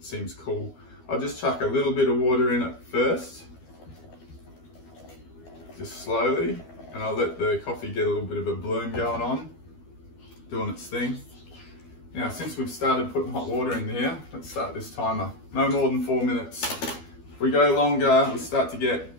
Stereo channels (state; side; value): late; right; 12 ms